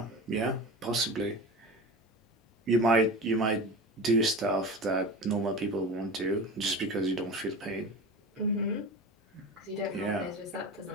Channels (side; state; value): both; normal; correlation 0.30